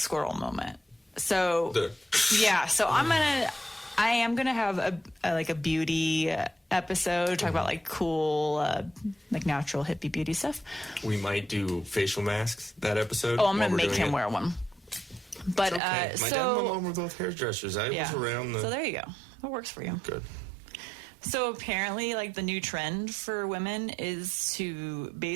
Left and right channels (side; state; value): left; drops out; at 15.8 s